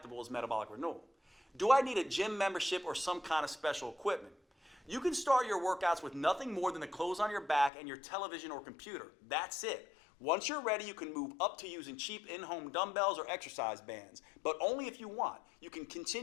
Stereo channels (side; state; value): right; drops out; at 7.7 s